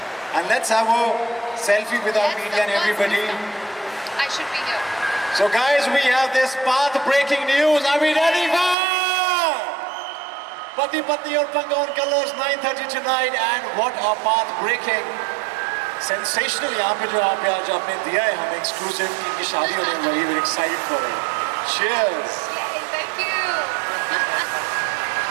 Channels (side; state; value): left; drops out; at 8.8 s